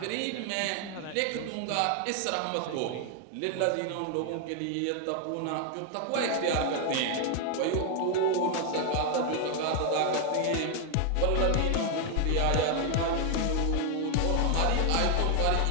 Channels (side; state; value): both; different; correlation 0.00